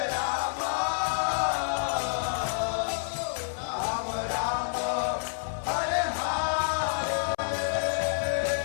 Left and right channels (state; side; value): silent; right; 59 dB below the other